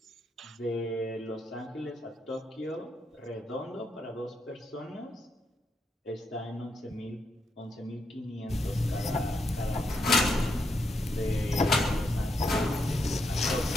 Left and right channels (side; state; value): both; normal; correlation 0.80